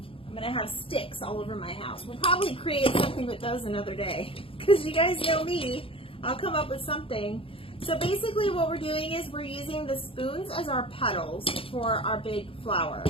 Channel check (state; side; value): late; right; 0.26 ms